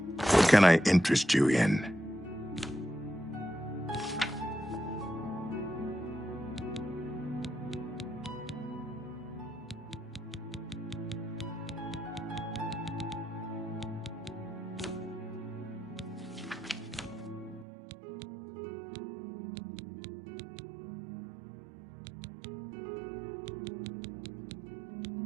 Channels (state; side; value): drops out; left; at 17.7 s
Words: What can I interest you in?